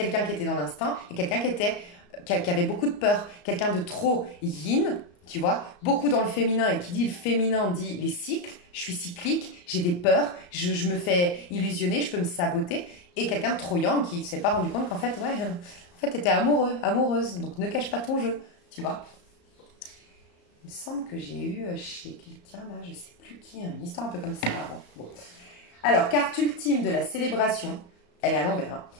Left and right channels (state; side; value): late; right; 34 ms